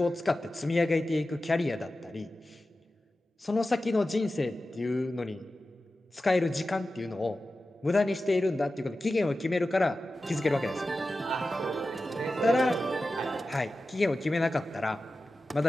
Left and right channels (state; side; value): normal; both; correlation 0.94